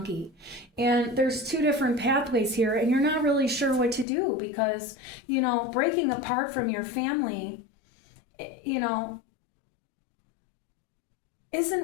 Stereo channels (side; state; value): right; drops out; at 4.0 s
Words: And there's two different pathways here, and you're not really sure what to do because, breaking apart from your family,